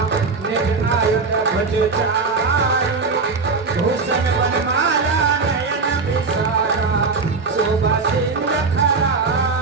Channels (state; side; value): quieter; left; 4.4 dB